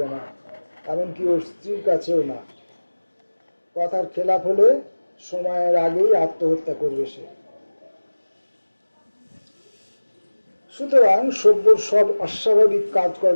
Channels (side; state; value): both; inverted; correlation -1.00